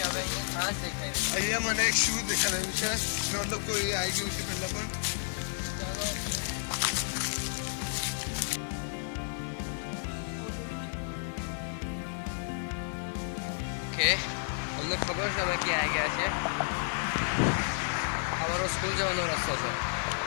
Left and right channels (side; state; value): right; silent; digital silence